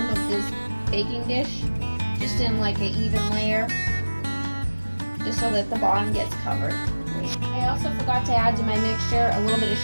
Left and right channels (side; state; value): both; inverted; correlation -1.00